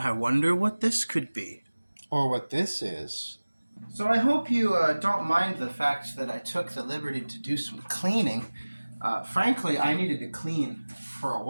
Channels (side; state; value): both; inverted; correlation -1.00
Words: wonder what this could be. Or what this is. So I hope you don't mind the fact that I took the liberty to do some cleaning. Frankly, I needed to clean for a